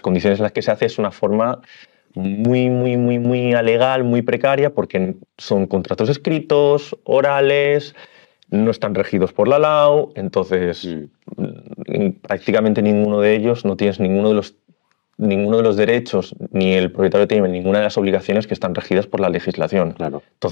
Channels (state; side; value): silent; right; digital silence